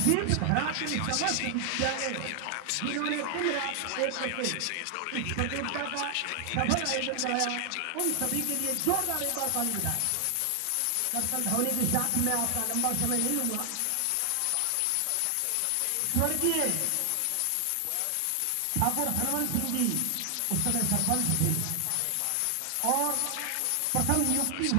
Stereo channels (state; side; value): different; both; correlation 0.00